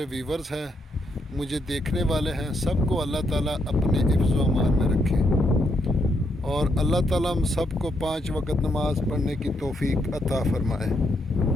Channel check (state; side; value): normal; both; correlation 0.77